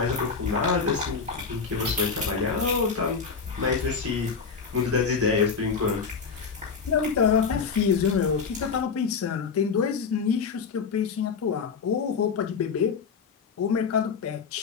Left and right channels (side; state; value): right; quieter; 5.6 dB